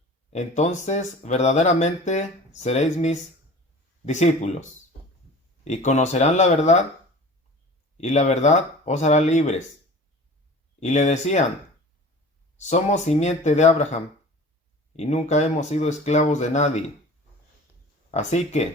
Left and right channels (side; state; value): both; normal; correlation 0.40